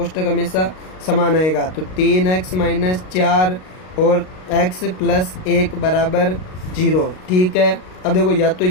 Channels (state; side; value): late; right; 38 ms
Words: हमेशा समान आएगा। तो 3x माइनस 4 और x प्लस 1 बराबर 0। ठीक है, अब देखो या तो